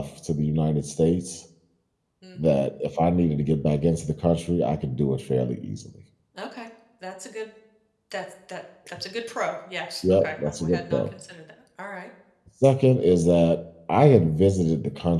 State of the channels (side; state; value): both; identical; correlation 1.00